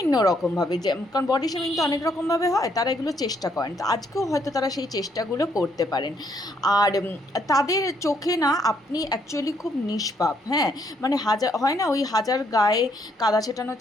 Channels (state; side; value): normal; both; correlation 0.71